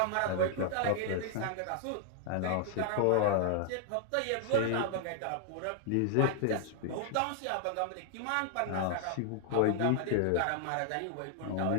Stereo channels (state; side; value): different; both; correlation 0.00